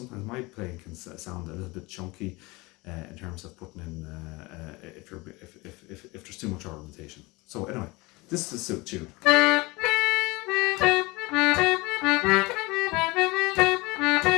my playing can sound a little bit chunky in terms of putting in if there's too much ornamentation. So anyway, this is the tune.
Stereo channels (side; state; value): right; quieter; 23.6 dB